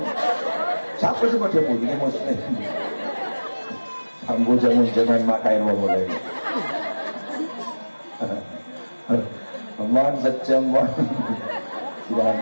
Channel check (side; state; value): both; inverted; correlation -1.00